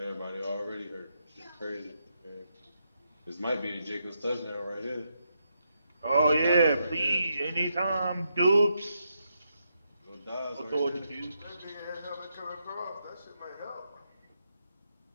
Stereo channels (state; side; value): inverted; both; correlation -0.81